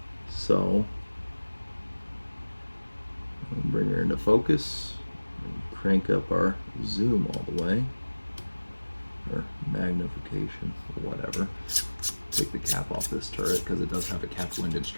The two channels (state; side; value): inverted; both; correlation -1.00